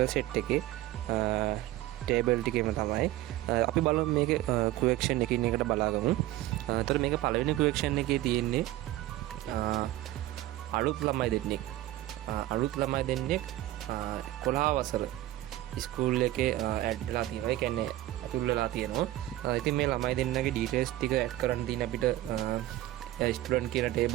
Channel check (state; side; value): quieter; left; 15.5 dB